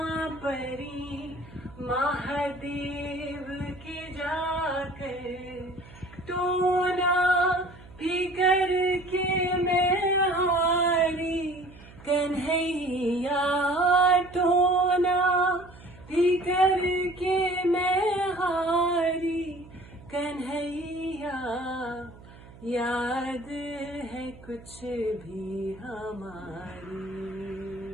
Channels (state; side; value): noise; right; hum, 20 dB below the sound